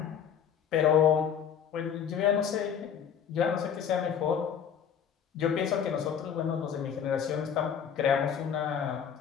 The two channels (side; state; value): right; quieter; 8.0 dB